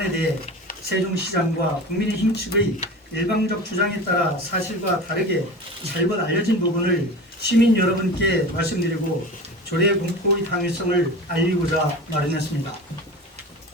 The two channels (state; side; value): normal; both; correlation 0.33